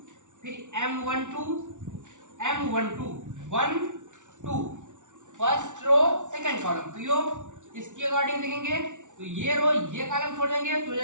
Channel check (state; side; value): late; left; 0.86 ms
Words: फिर M12 1 2 first row second column, तो यो इसके अकॉर्डिंग देखेंगे तो ये रो ये कॉलम छोड़ देंगे तो हो